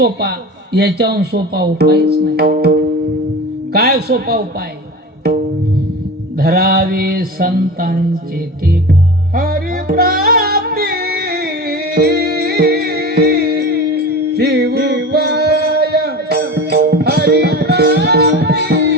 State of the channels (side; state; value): both; normal; correlation 0.31